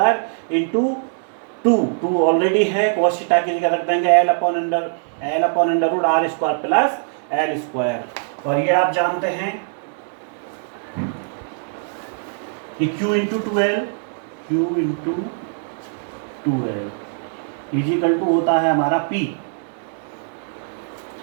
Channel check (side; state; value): left; silent; 65 dB below the other